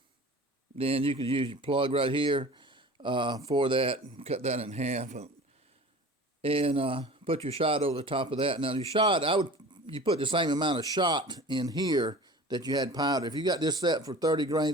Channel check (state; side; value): normal; both; correlation 0.40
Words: then you could use your plug right here for that, cut that in half, and put your shot over the top of that. Now your shot, you put the same amount of shot in here that you had powder. If you got this set for 30